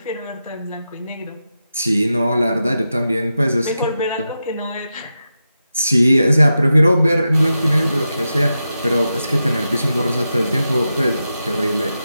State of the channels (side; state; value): both; inverted; correlation -0.89